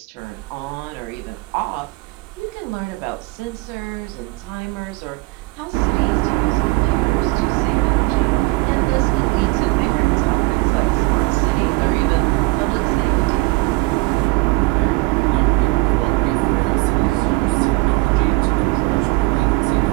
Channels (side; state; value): left; quieter; 22.6 dB